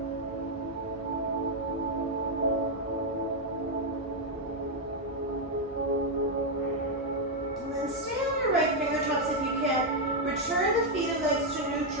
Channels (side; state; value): both; normal; correlation 0.00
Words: And then stay on your right fingertips if you can. Return the feet and legs to